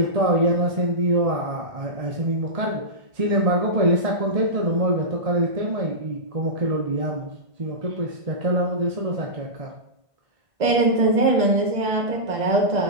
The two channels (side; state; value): left; late; 1.5 ms